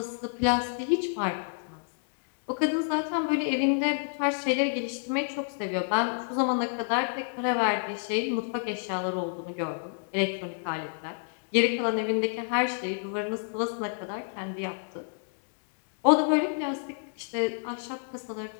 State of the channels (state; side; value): silent; right; digital silence